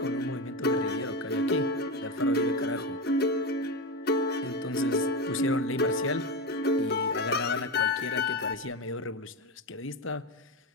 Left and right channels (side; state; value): both; normal; correlation 0.17